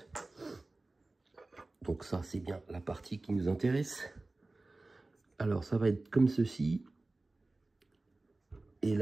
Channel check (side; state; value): left; quieter; 3.1 dB